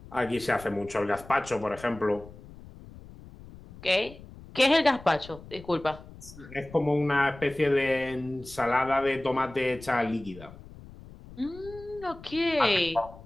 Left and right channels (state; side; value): noise; left; rumble, 18 dB below the sound